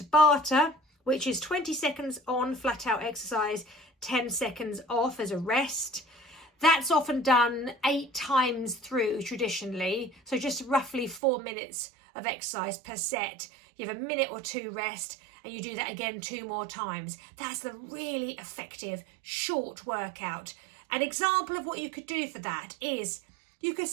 which is 20 seconds on flat out exercise, 10 seconds off as a rest. That's often done 8 times through traditionally. So just roughly 4 minutes of exercise per set. You have a minute or 2 rest and you do that again 2 more times. That's the really effective short workout. An example of what you could do for that is you could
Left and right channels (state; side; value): drops out; left; at 11.2 s